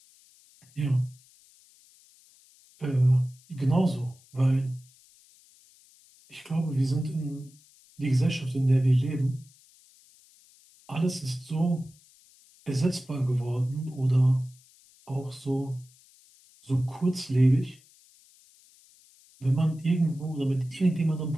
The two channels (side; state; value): left; noise; hiss, 28 dB below the sound